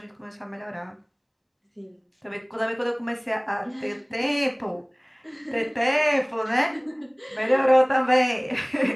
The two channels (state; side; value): identical; both; correlation 1.00